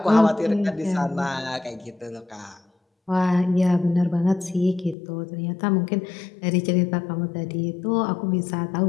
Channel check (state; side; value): drops out; right; at 5.0 s